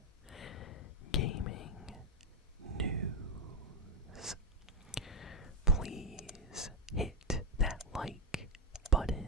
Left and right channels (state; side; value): normal; both; correlation 0.05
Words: Gaming News. Please hit that like